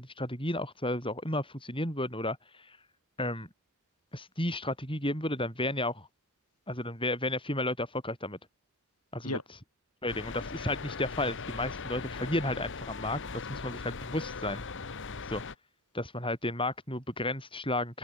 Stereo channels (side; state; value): both; normal; correlation 0.37